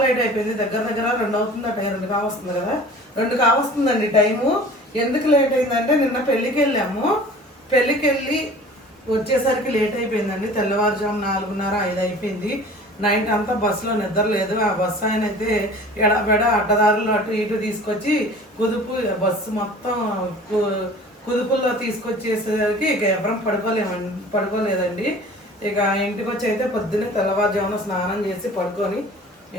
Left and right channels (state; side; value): normal; both; correlation 0.44